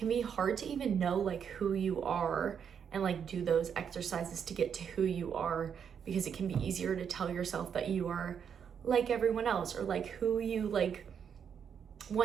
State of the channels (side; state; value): left; quieter; 7.5 dB